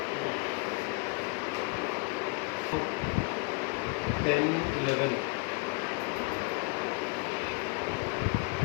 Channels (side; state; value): right; quieter; 28.6 dB